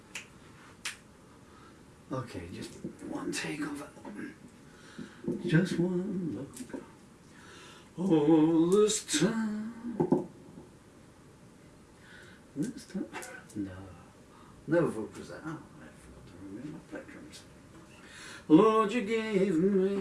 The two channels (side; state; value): both; identical; correlation 1.00